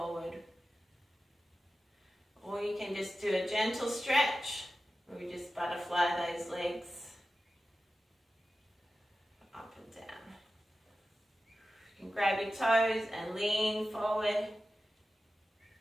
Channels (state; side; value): normal; both; correlation 0.94